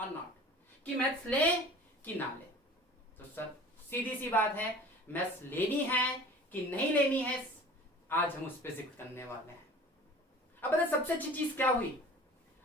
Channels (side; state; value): both; normal; correlation 0.43